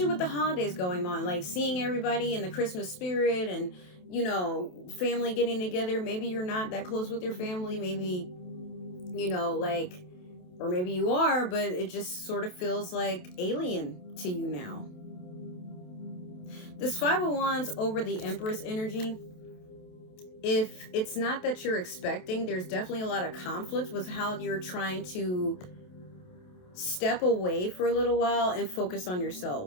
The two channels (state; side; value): late; right; 28 ms